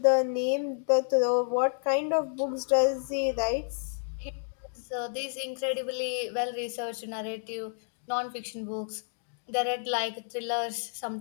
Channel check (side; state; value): right; silent; digital silence